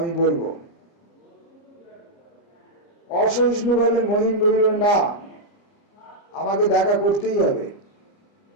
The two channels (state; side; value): late; right; 29 ms